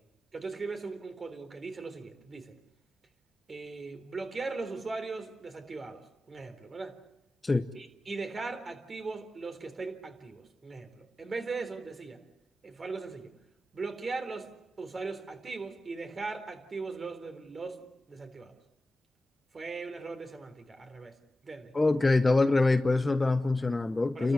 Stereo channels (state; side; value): normal; both; correlation 0.94